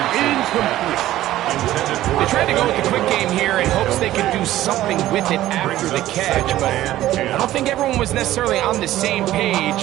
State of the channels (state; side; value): quieter; left; 14.4 dB